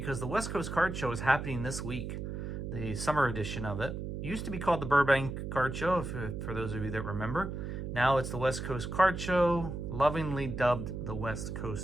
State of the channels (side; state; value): right; noise; hum, 5 dB below the sound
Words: the West Coast Card Show is happening this week, the summer edition of it. It used to be called the Burbank Card Show, for those of you that remember. Now it's the West Coast Card Show, lovingly dubbed the West